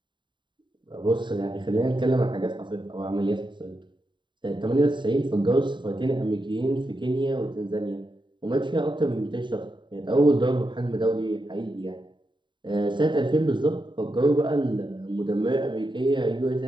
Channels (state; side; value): late; left; 0.23 ms